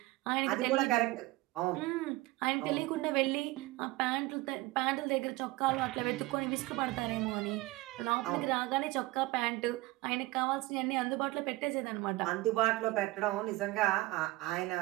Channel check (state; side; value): quieter; left; 19.8 dB